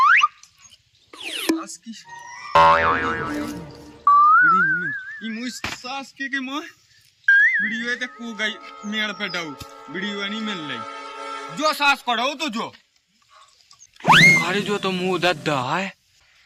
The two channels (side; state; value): both; identical; correlation 1.00